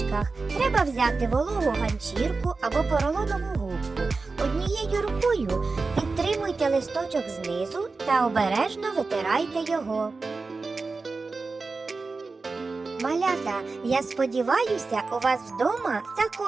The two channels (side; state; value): left; quieter; 4.0 dB